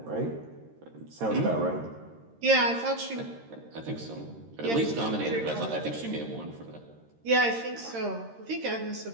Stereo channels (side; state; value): left; late; 13 ms